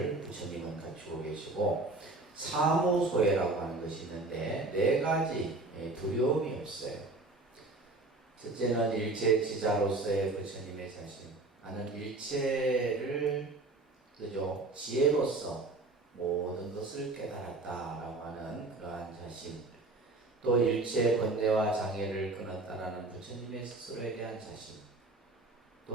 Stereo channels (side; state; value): left; quieter; 3.2 dB